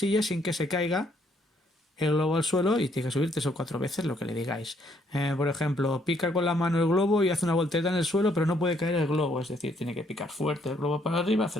sin que se caiga el globo al suelo y tiene que subir 3 o 4 veces lo que le digáis. Por ejemplo, pica con la mano el globo y hace una voltereta en el suelo, pero no puede caer el globo, es decir, tiene que picar fuerte el globo para arriba, hace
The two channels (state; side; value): normal; both; correlation 0.69